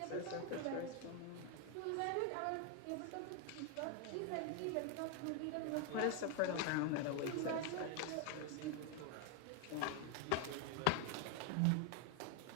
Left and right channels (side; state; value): both; different; correlation 0.01